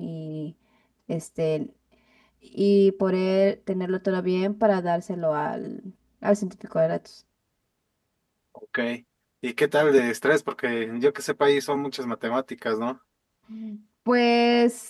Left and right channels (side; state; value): both; identical; correlation 1.00